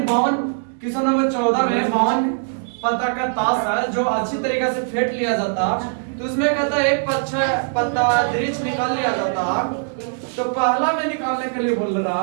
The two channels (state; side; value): silent; left; digital silence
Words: 52 क्वेश्चन नंबर 14 में 52 पत्ता का ताश है जो अच्छी तरीके से फेंट लिया जाता, तो उसमें कहता है एक पत्ता दृढ़ निकाल लिया जाता। तो पहला में निकालने के लिए बोल